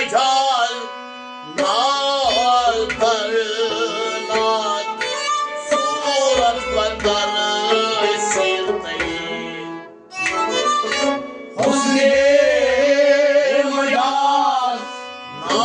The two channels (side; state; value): both; identical; correlation 1.00